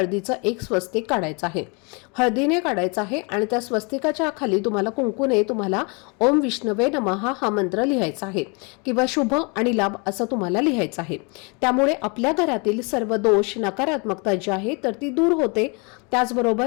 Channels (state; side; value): quieter; right; 32.4 dB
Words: एक स्वस्तिक काढायचं आहे. हळदीने काढायचं आहे आणि त्या स्वस्तिकाच्या खाली तुम्हाला कुंकूने तुम्हाला ओम विष्णवे नमः हा मंत्र लिहायचा आहे किंवा शुभ आणि लाभ असं तुम्हाला लिहायचं आहे. त्यामुळे आपल्या घरातील सर्व दोष, नकारात्मकता जी आहे तर ती दूर होते.